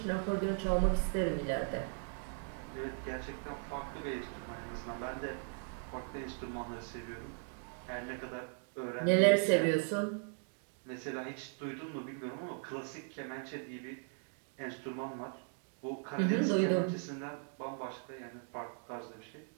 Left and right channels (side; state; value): left; silent; 52 dB below the other